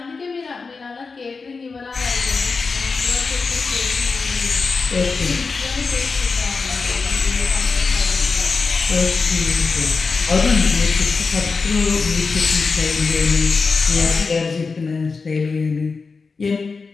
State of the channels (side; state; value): right; quieter; 4.5 dB